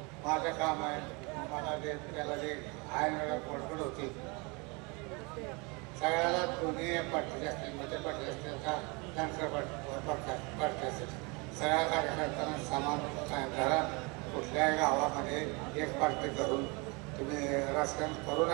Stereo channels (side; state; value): left; quieter; 29.1 dB